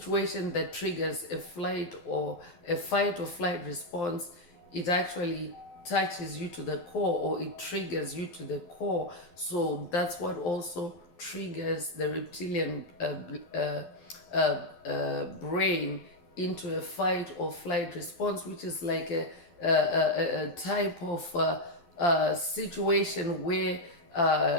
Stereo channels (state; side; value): late; right; 12 ms